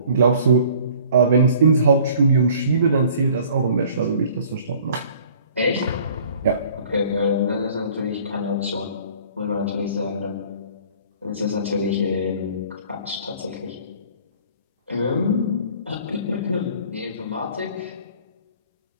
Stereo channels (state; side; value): inverted; both; correlation -0.51